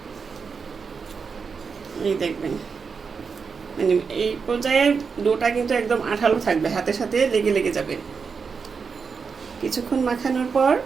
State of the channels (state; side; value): quieter; left; 5.5 dB